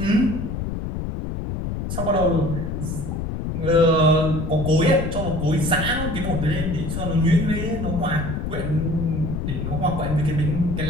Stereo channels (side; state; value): left; noise; rumble, 3 dB below the sound